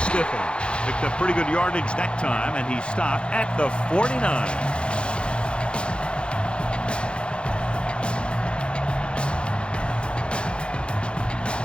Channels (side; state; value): right; late; 0.056 ms